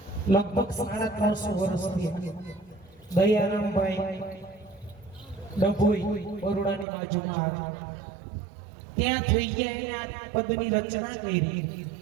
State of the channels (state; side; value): drops out; left; at 6.9 s